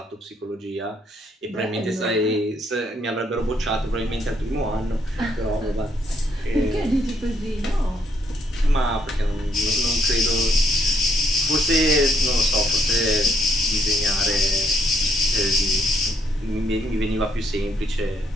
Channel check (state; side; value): normal; both; correlation 0.71